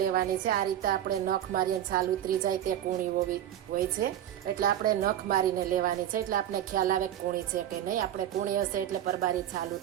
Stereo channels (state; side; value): quieter; left; 11.3 dB